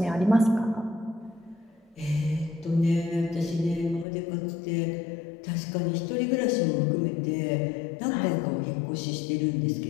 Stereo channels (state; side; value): drops out; right; at 4.0 s